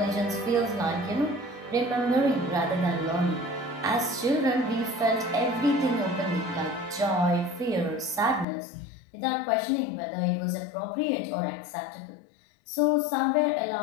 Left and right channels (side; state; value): right; drops out; at 8.5 s